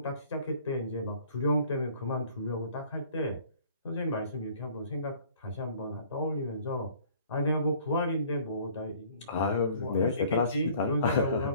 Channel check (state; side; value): inverted; both; correlation -0.54